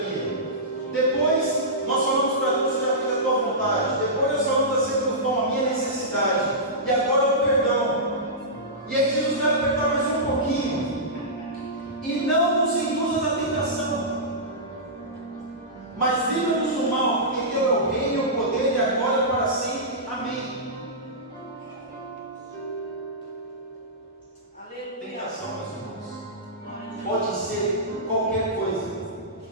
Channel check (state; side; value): normal; both; correlation -0.16